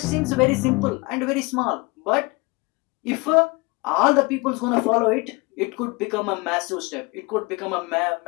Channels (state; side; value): quieter; right; 26.3 dB